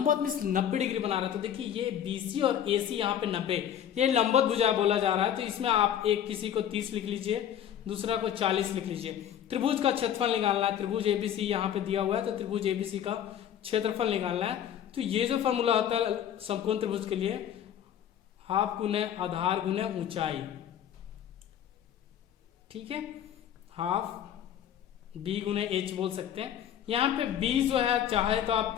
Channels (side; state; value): right; quieter; 9.9 dB